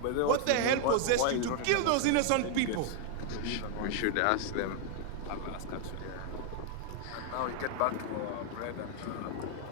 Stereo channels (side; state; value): both; different; correlation 0.00